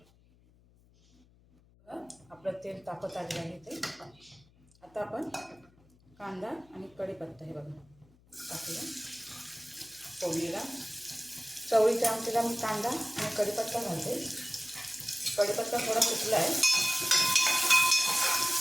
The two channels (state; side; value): noise; left; hum, 30 dB below the sound